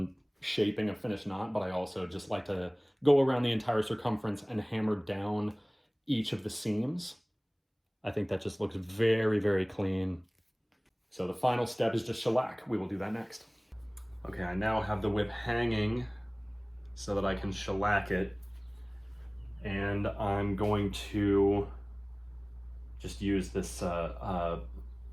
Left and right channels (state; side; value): identical; both; correlation 1.00